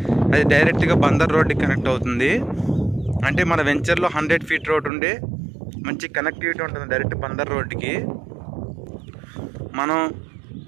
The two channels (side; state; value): left; drops out; at 4.9 s